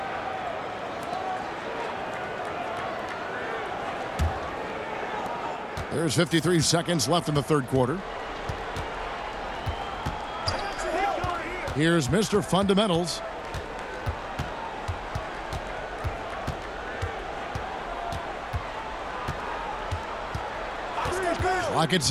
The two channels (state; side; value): identical; both; correlation 1.00